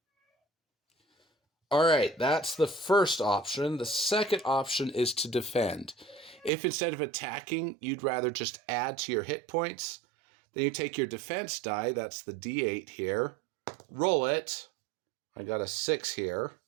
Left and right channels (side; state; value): left; drops out; at 6.5 s